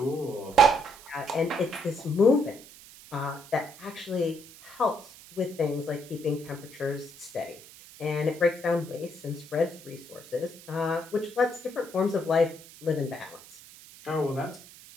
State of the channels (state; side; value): noise; right; hiss, 19 dB below the sound